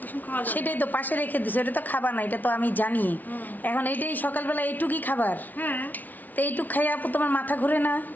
কুসুম খাওয়া যাবে না। সেটাই তো পাশে রেখে দিছো, এটা তো খাবার না, এটা তো আমি জানি। হুম। এখন এইটাই সকালবেলা এইটুকুই খাবার, হ্যাঁ। তো এইটুক খাই আপু তোমার মাথা ঘুরে না?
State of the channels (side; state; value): right; late; 0.080 ms